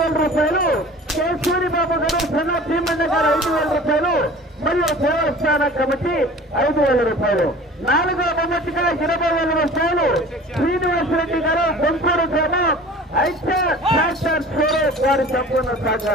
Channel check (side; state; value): both; normal; correlation 0.43